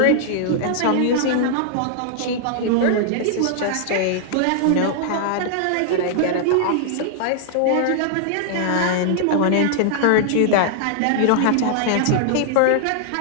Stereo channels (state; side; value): different; both; correlation -0.01